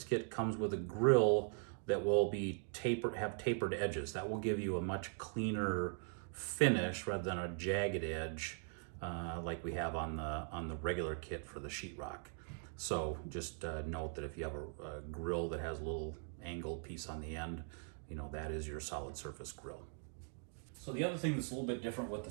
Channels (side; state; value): left; silent; 51 dB below the other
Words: kit comes with a grill that will be have tapered edges. That will give you a much cleaner finish rather than a jagged edge like we have on the regular kit for the sheetrock. So just note that if you have a grill that has a little angled piece on the end, you know, that is your solid surface grill. So the other thing that's a little bit different with the